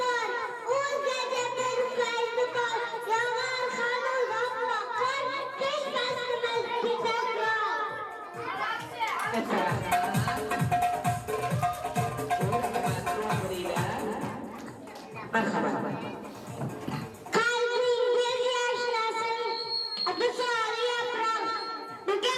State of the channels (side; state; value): both; identical; correlation 1.00